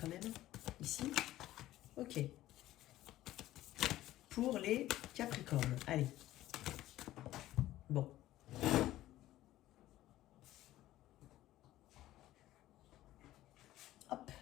même, ici. Ok. Pour les Capricornes, allez. Bon. Hop,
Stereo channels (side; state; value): right; quieter; 14.9 dB